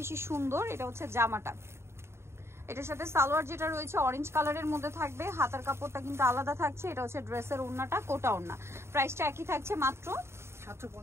সুন্দর। এটা হচ্ছে জামাটা, এটার সাথে সালোয়ার যেটা রয়েছে অরেঞ্জ কালারের মধ্যে থাকবে, হাতার কাপড়টা কিন্তু আলাদা থাকছে। এটা হচ্ছে ড্রেসের ওড়নাটা, কোটা ওড়না। প্রাইসটা একই থাকছে, মাত্র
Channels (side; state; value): left; late; 0.13 ms